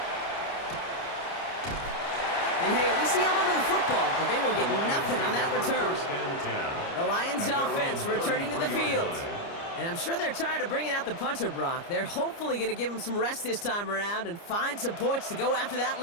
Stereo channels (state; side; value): late; right; 29 ms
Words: And hey, at least he held onto the football, but they will get nothing on that return. The Lions offense returning to the field. And I'm sure they're tired of bringing out the punter, Brock. They're hopefully going to give him some rest this time around and find some points to go after that